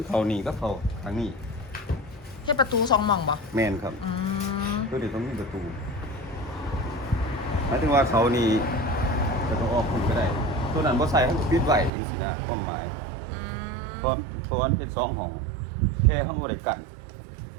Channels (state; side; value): drops out; left; at 11.9 s